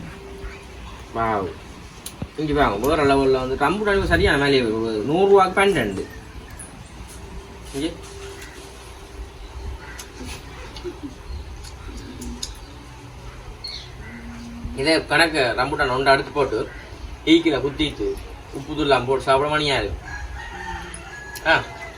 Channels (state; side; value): identical; both; correlation 1.00